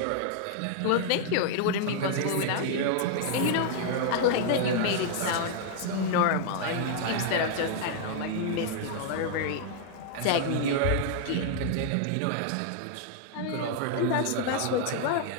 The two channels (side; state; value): both; different; correlation -0.01